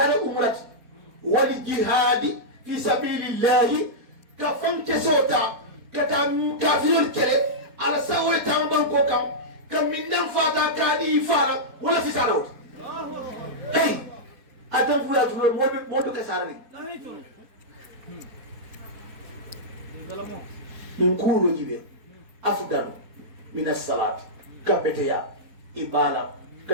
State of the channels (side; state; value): left; late; 4.2 ms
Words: umrati wal jihadi fi sabilillahi kafan kesota kata kafirul kere ala sawai tamban ko kam min dan fata kadi fara wala fi salawt hey adam fula tulo modu kasarani min kulo jibe afdalu min as-salat kabeteya ibala